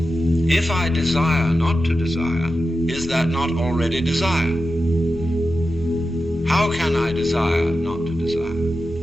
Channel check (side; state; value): left; noise; rumble, 21 dB below the sound